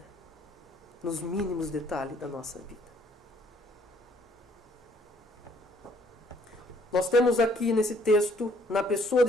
Nos mínimos detalhes da nossa vida. Nós temos aqui nesse texto, na pessoa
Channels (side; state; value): both; normal; correlation 0.63